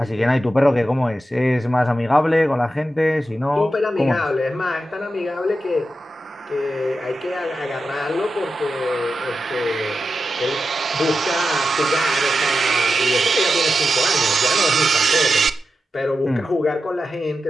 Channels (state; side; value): normal; both; correlation 0.90